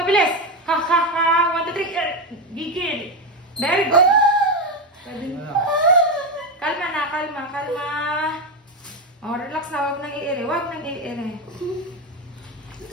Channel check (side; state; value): both; normal; correlation 0.12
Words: Ha, ha, ha. 1, 2, 3. Ere. Gigil. Very good. Kalma na, kalma. Oh, relax na. Huwag nang i-ere.